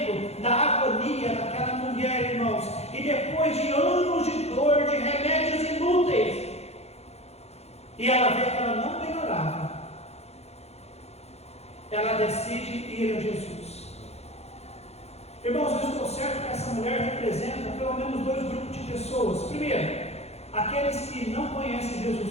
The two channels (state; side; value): late; right; 0.31 ms